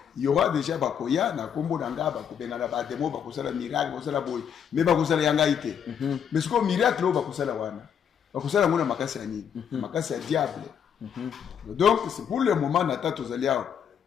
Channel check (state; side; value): quieter; right; 8.1 dB